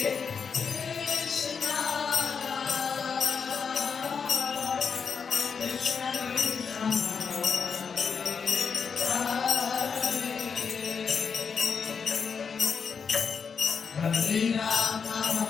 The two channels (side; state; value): right; quieter; 6.1 dB